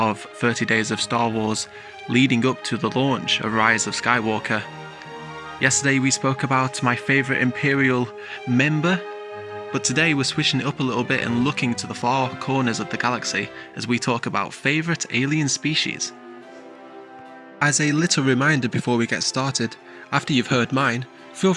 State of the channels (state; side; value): identical; both; correlation 1.00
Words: 30 Days of Star Wars, leading up to the launch of Rise of Skywalker. Yesterday we spoke about my favourite Imperial member, but today we're switching it up a little bit and looking to the far corners of the galaxy as we talk about favourite alien species. As a little reminder before we get started, after you've heard mine, feel